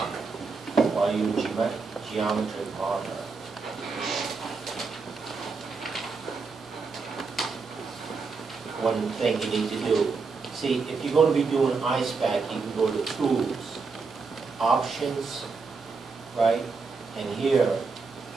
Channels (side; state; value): left; quieter; 4.6 dB